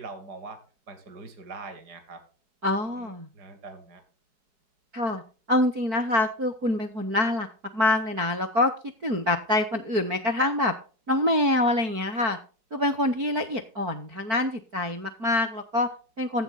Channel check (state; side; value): late; left; 4.5 ms